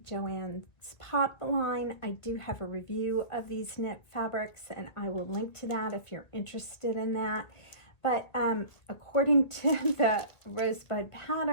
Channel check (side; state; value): right; late; 2.1 ms